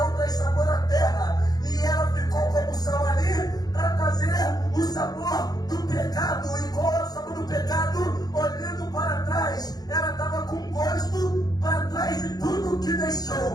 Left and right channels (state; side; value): late; right; 0.19 ms